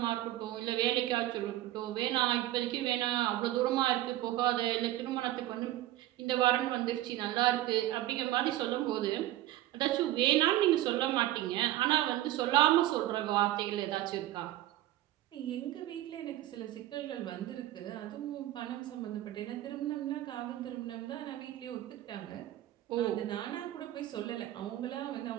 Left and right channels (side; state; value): left; quieter; 14.6 dB